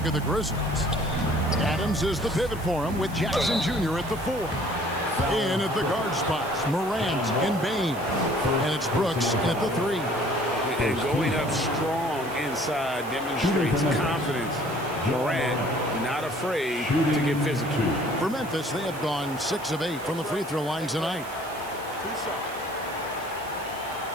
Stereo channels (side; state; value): right; noise; hiss, 18 dB below the sound